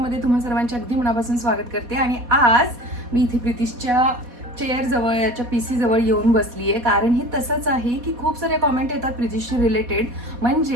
तुम्हा सर्वांचे अगदी मनापासून स्वागत करते. आणि आज मी इथे प्रितिशच्या चेअर जवळ याच्या PC जवळ येऊन बसली आहे. कारण हे तसंच आहे की खूप सारे कॉमेंट येतात प्रितिशशी रिलेटेड,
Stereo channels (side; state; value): left; late; 4.2 ms